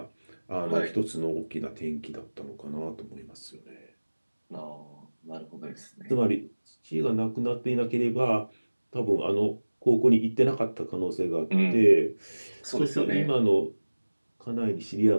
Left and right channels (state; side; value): inverted; both; correlation -1.00